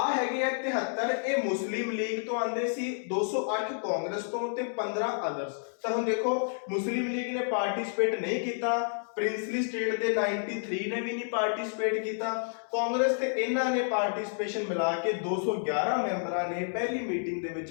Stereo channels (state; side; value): silent; right; 58 dB below the other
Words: ਹੈਗੇ ਆ 73, ਇਹ ਮੁਸਲਿਮ ਲੀਗ ਤੋਂ ਆਂਦੇ ਸੀ, 208 ਕਾਂਗਰਸ ਤੋਂ ਤੇ 15 ਅਦਰਸ। ਤਾਂ ਹੁਣ ਦੇਖੋ, ਮੁਸਲਿਮ ਲੀਗ ਨੇ ਪਾਰਟਿਸਿਪੇਟ ਨਹੀਂ ਕੀਤਾ, ਪ੍ਰਿੰਸਲੀ ਸਟੇਟ ਦੇ 93 ਨੇ ਵੀ ਨਹੀਂ ਪਾਰਟਿਸਿਪੇਟ ਕੀਤਾ, ਕਾਂਗਰਸ ਤੇ ਇਹਨਾਂ ਨੇ ਪਾਰਟਿਸਿਪੇਸ਼ਨ ਮਿਲਾ ਕੇ 211 ਮੈਂਬਰਾਂ ਨੇ ਪਹਿਲੀ ਮੀਟਿੰਗ ਦੇ